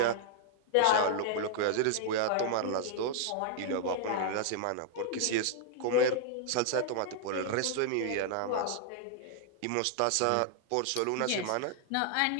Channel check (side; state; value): both; different; correlation -0.01